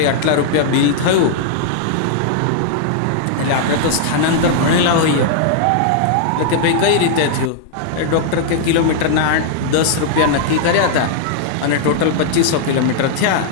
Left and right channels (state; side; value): different; both; correlation -0.01